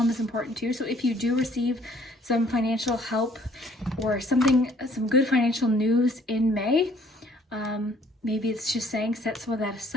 is important too. So if you do receive some financial help or some good financial news in May, maybe it's just saying set some of that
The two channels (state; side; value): normal; both; correlation 0.60